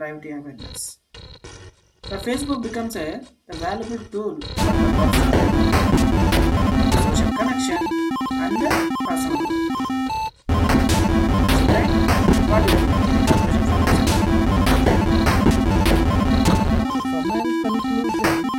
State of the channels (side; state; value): both; identical; correlation 1.00